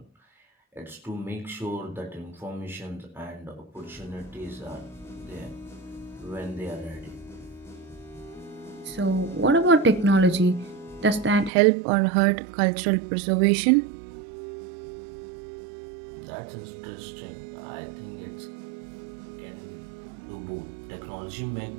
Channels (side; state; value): left; drops out; at 11.5 s